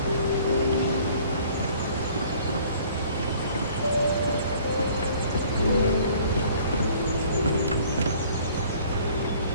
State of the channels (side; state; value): both; inverted; correlation -0.54